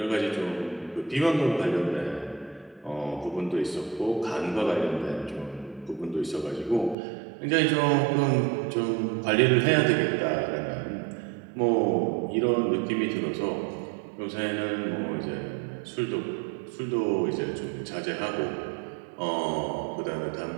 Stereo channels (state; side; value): drops out; left; at 7.0 s